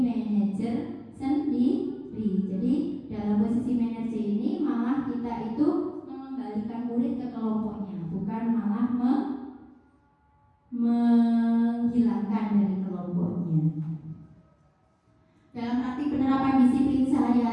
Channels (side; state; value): both; identical; correlation 1.00